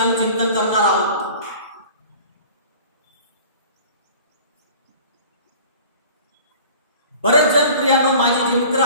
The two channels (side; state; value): both; inverted; correlation -0.44